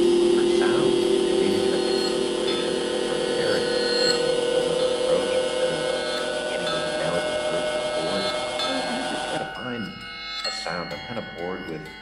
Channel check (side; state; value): both; identical; correlation 1.00